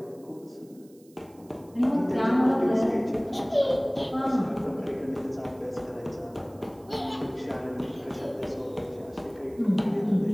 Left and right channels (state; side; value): noise; right; hiss, 29 dB below the sound